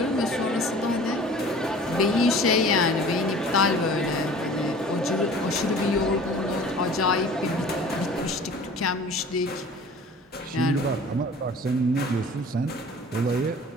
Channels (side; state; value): both; normal; correlation 0.45